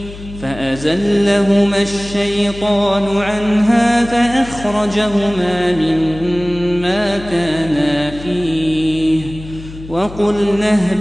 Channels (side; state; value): left; noise; hum, 14 dB below the sound